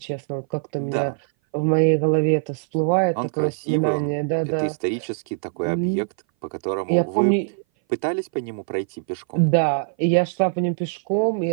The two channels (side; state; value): left; silent; 59 dB below the other